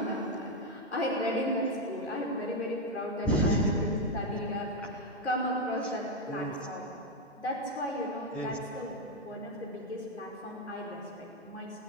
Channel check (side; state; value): both; normal; correlation 0.05